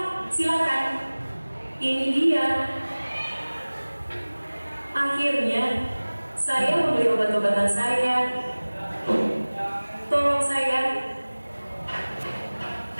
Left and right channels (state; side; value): inverted; both; correlation -1.00